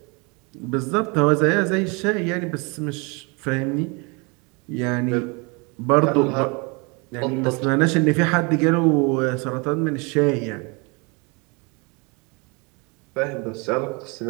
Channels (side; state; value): left; quieter; 30.1 dB